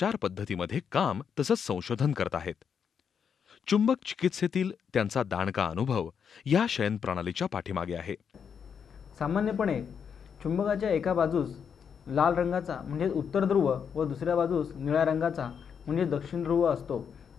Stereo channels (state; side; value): quieter; right; 7.1 dB